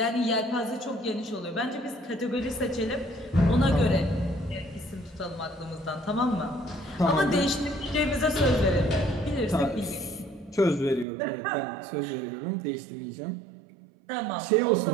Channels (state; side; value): drops out; left; at 11.1 s